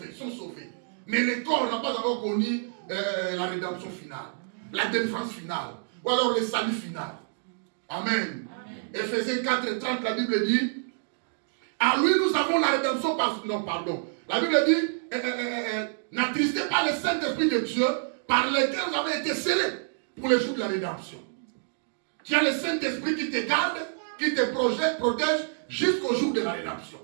sont sauvés. Mais le corps n'a pas encore connu la rédemption finale, la délivrance finale, ou alors le salut final. Amen. Éphésiens 4, 30, la Bible dit, à lui nous avons la rédemption par... Non, pardon. La Bible dit, n'attristez pas le Saint-Esprit de Dieu par lequel vous avez été scellés pour le jour de la rédemption. Tu as le Saint-Esprit qui te garde, qui te protège jusqu'au jour de la rédemption.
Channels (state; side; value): silent; left; digital silence